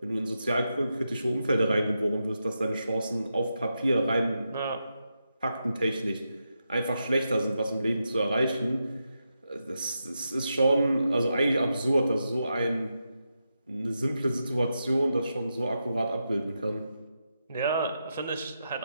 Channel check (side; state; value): both; inverted; correlation -0.86